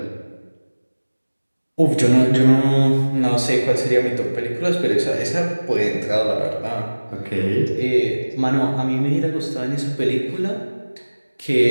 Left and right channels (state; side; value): inverted; both; correlation -1.00